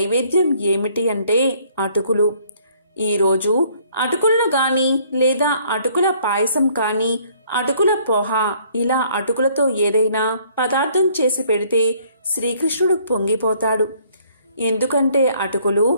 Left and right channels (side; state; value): both; inverted; correlation -0.62